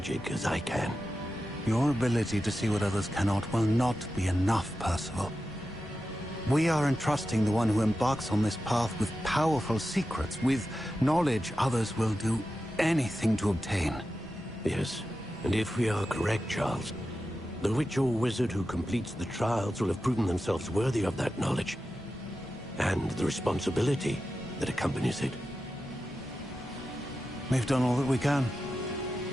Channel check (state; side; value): normal; both; correlation 0.91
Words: as I can. Your ability to see what others cannot will not be enough, Percival. We are entrusting the one who embarks on this path with powerful secrets, with knowledge others will do anything to obtain. Yes, and if we are correct, Charles, the witch or wizard who completes the trials will have proven themselves worthy of that knowledge, and the responsibility that accompanies it. We've done all that we can.